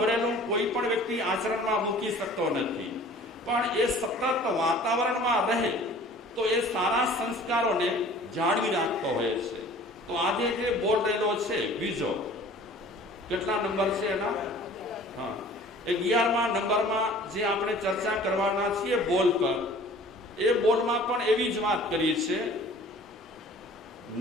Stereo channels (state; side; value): normal; both; correlation 0.48